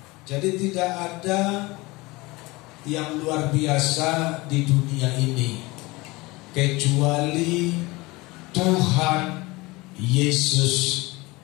Jadi tidak ada yang luar biasa di dunia ini kecuali Tuhan Yesus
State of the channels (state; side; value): quieter; right; 22.6 dB